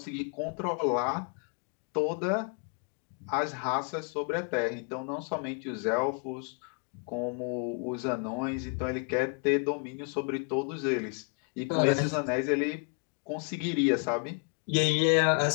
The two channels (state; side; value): quieter; right; 38.1 dB